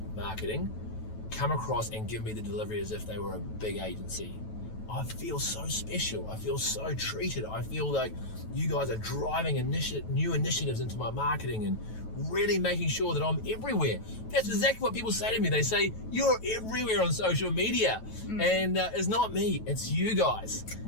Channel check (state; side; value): late; right; 9.2 ms